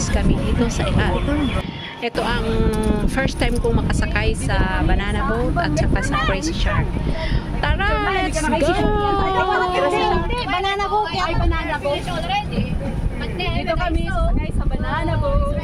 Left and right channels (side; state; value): both; identical; correlation 1.00